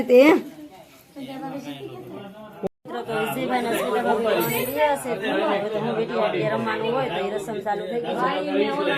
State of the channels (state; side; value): identical; both; correlation 1.00